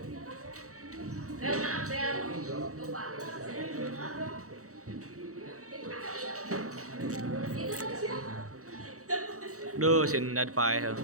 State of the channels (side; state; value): left; late; 0.65 ms